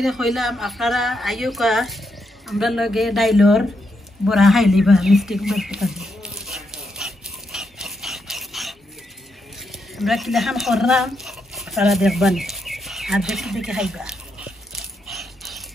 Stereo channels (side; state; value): both; normal; correlation 0.81